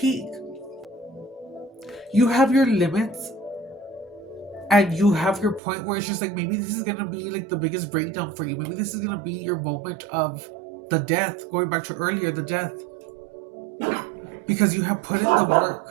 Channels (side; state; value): left; drops out; at 5.6 s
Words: You have your limits and you have your point where it's just like maybe this is gonna be like the biggest breakdown for you. Maybe this is gonna be your moment of the death, going back to earlier, the death. Because you have put in the